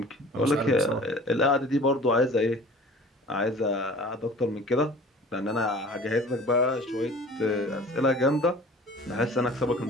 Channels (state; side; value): normal; both; correlation 0.45